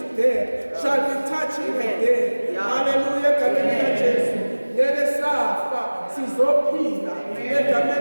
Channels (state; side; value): inverted; both; correlation -1.00